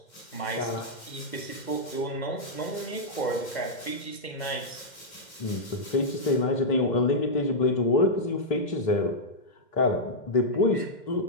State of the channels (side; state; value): right; late; 2.1 ms